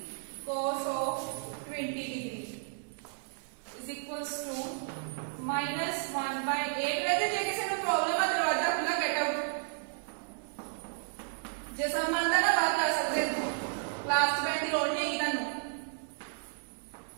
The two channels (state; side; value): silent; left; digital silence